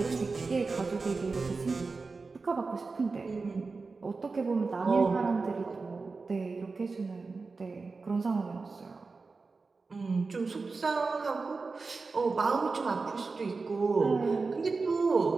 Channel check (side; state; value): left; quieter; 4.1 dB